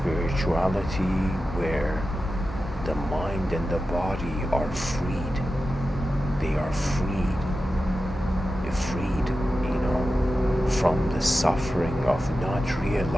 where the mind and the body are freed. They are freed. You're freed, from the suffering of not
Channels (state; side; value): normal; both; correlation 0.92